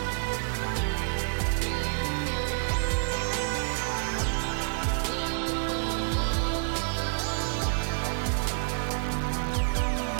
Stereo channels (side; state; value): left; silent; 59 dB below the other